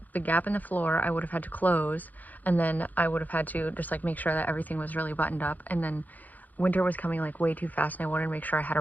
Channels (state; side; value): late; right; 0.082 ms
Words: the gap in the floor I would have had to close, and then I would have had to just make sure that everything was really buttoned up. And then winter was coming way too fast and I wanted to make sure I had a